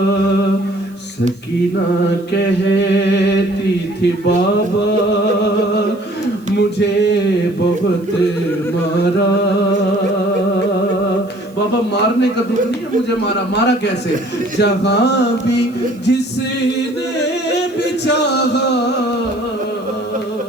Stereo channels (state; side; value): noise; right; hiss, 29 dB below the sound